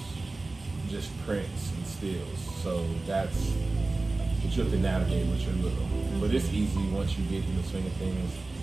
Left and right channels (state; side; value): quieter; left; 3.3 dB